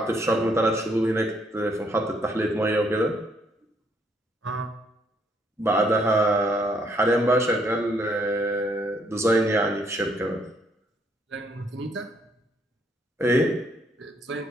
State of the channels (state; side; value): normal; both; correlation 0.70